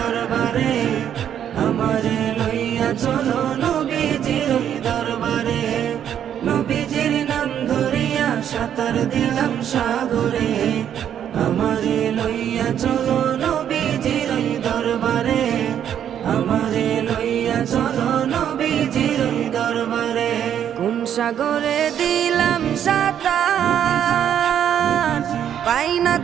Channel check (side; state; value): left; quieter; 9.6 dB